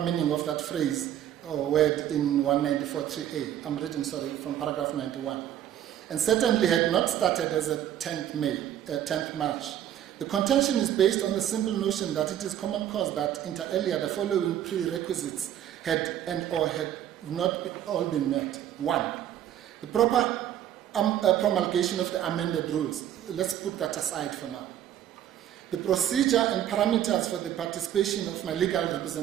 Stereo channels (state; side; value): quieter; left; 11.1 dB